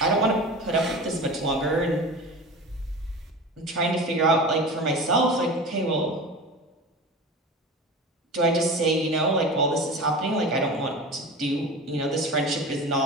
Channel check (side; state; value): both; normal; correlation 0.32